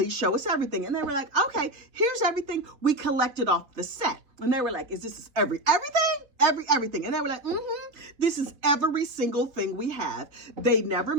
show us everything. And they were like, okay, here's everything we collected off the set. And they were like, is this everything? And they were like, this is every single thing we have. They never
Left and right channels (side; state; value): left; late; 3.2 ms